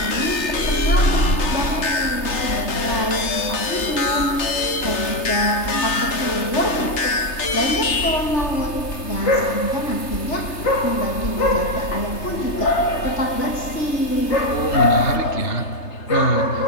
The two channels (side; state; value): right; late; 3.3 ms